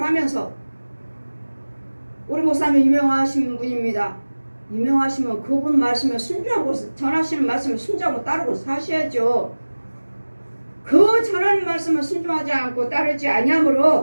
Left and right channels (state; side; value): inverted; both; correlation -1.00